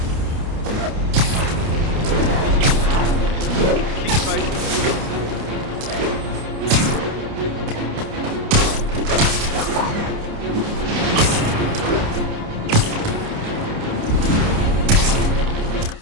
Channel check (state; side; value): late; left; 29 ms